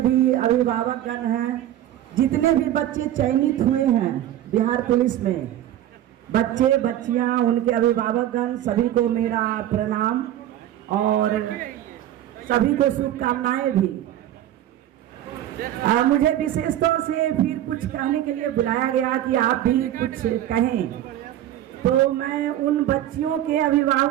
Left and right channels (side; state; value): left; quieter; 12.4 dB